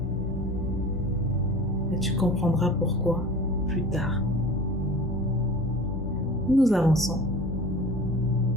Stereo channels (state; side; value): normal; both; correlation 0.39